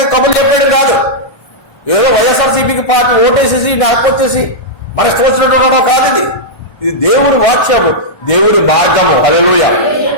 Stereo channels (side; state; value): right; late; 1.3 ms